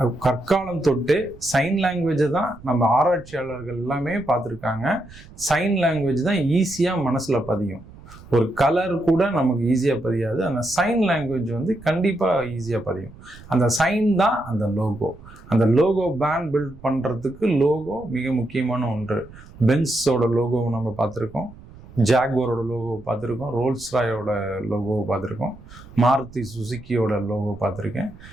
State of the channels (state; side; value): noise; right; rumble, 20 dB below the sound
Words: கற்காலம் தொட்டு சைன் லாங்குவேஜை தான் நம்ம ஆராய்ச்சியாளர்கள் எல்லாமே பார்த்துருக்காங்க. சைன் லாங்குவேஜ் தான் ஈஸியாக மனசில் பதியும். ஒரு கலர் கூட நமக்கு ஈஸியாக பதியாது, அந்த சைன் லாங்குவேஜ் வந்து கண்டிப்பாக ஈஸியாக பதியும். அந்த சைன் தான் அந்த லோகோ. அந்த லோகோ பிராண்ட் பில்ட் பண்ணுறதுக்கு லோகோ மிக முக்கியமான ஒன்று. பென்ஸோட லோகோவை நம்ம பார்த்துருக்கோம், ஜாக்வாரோட லோகோவை பார்த்துருக்கோம், ரோல்ஸ் ராயோட லோகோவை பார்த்துருக்கோம், மாருதி சுசுக்கியோட லோகோ பார்த்துருக்கேன்.